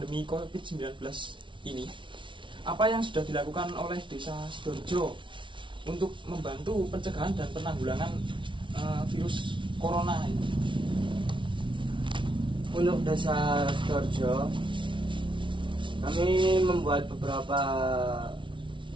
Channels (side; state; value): left; late; 0.24 ms